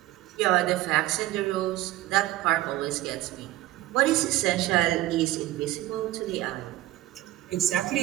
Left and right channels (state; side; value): quieter; left; 15.8 dB